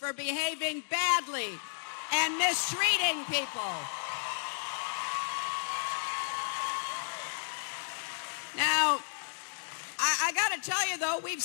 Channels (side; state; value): right; silent; digital silence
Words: behaving badly and mistreating people. Now, I got to tell you, though, we've